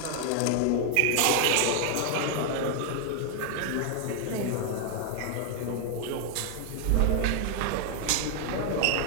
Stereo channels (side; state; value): both; different; correlation 0.00